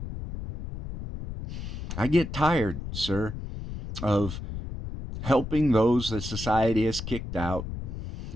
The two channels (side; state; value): left; noise; rumble, 8 dB below the sound